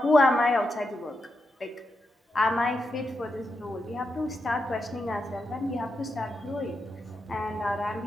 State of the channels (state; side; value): normal; both; correlation 0.86